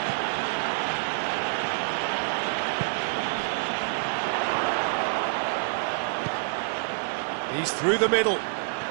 He's through the middle.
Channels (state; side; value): silent; left; 59 dB below the other